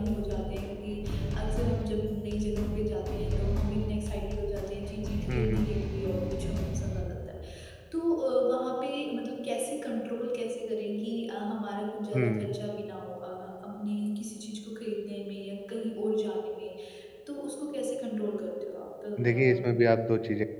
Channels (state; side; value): identical; both; correlation 1.00